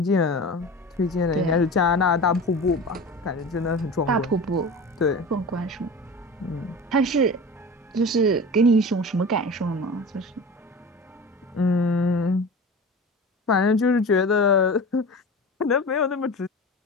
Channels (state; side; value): normal; both; correlation 0.33